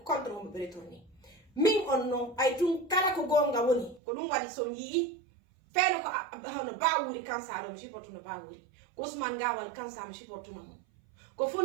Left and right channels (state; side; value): drops out; left; at 4.0 s